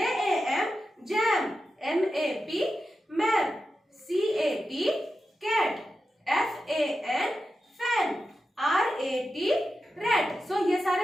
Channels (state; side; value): normal; both; correlation 0.90